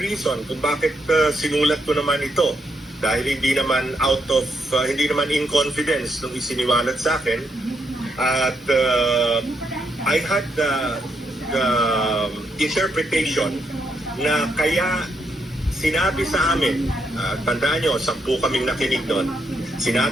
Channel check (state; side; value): normal; both; correlation 0.78